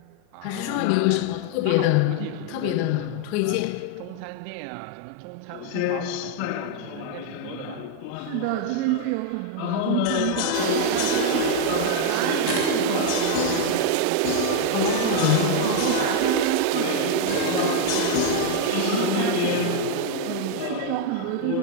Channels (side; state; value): both; different; correlation 0.00